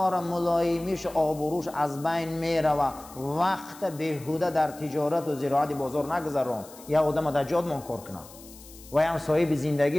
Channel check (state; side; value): noise; left; hiss, 20 dB below the sound